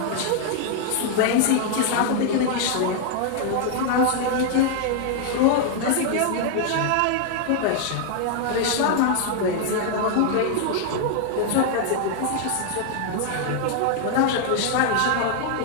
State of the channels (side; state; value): both; different; correlation 0.00